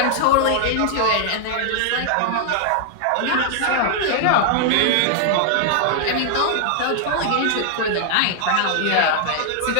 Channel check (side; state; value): both; different; correlation 0.00